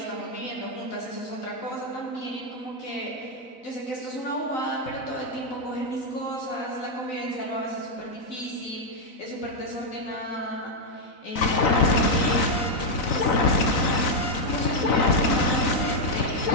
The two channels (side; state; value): right; late; 3.9 ms